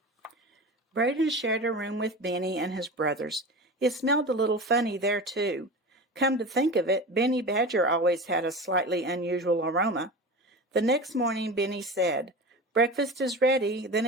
Brayden shared a room with Benny and his brothers. It smelled a little funny there, too. Come to think of it, Benny Badger always had a slightly unusual aroma. The next morning, Benny said, "Breakfast is ready, then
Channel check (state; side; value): normal; both; correlation 0.30